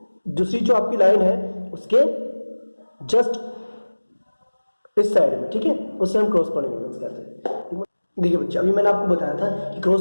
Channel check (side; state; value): both; inverted; correlation -1.00